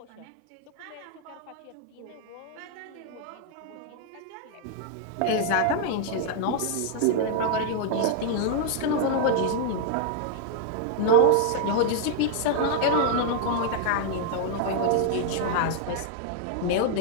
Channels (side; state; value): both; different; correlation 0.00